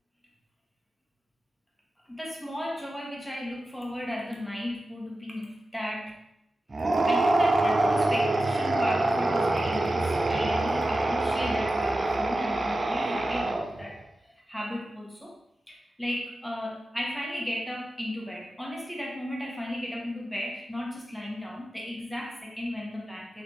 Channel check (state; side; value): normal; both; correlation 0.93